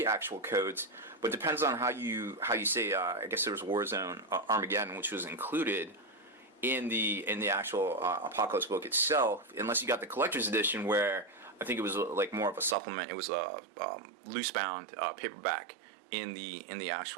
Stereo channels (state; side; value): drops out; left; at 12.8 s